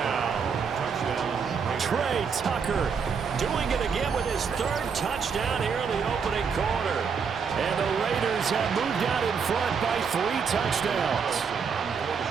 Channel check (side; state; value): left; quieter; 6.1 dB